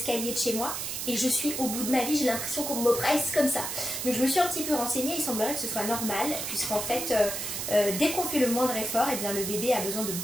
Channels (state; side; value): noise; right; hiss, 4 dB below the sound